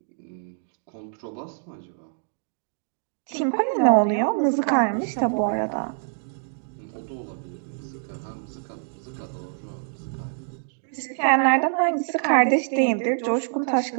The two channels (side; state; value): left; silent; digital silence